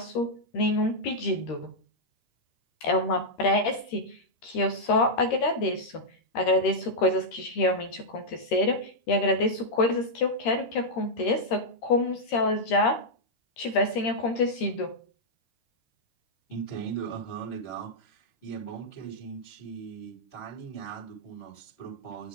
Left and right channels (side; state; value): right; late; 13 ms